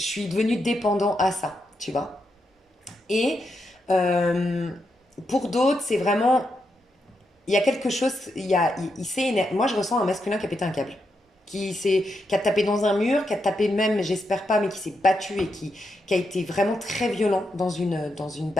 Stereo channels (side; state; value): both; normal; correlation 0.83